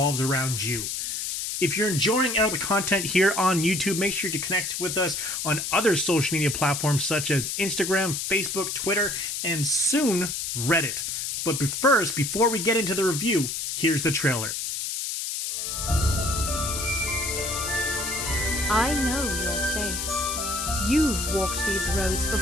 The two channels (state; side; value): noise; left; hiss, 3 dB below the sound